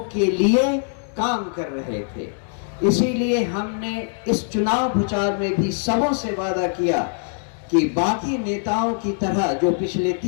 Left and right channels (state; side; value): silent; right; 64 dB below the other